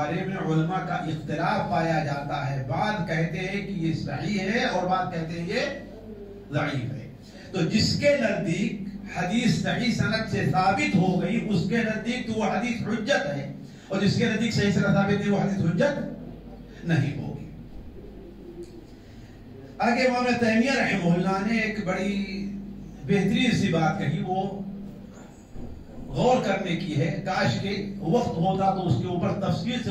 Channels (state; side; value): identical; both; correlation 1.00